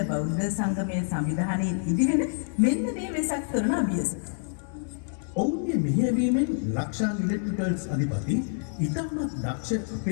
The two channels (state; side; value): silent; right; digital silence